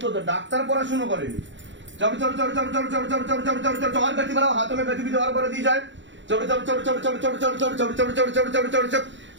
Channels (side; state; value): left; late; 0.54 ms